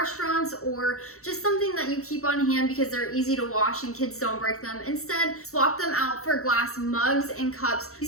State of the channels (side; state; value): right; late; 0.64 ms